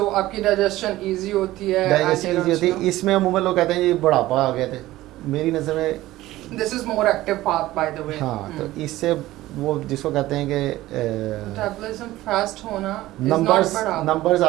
आपकी डाइजेशन इजी होती है, डाइजेशन ईजी होती है। इसमें अमूमन लोग कहते हैं ये बुढ़ापा आ गए थे, मेरी नज़र में this is more active path by the way. हाँ, तो इससे वो जिसको कहते हैं कि मेटाबॉलिज्म फास्ट होना numbers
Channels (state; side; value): quieter; left; 16.4 dB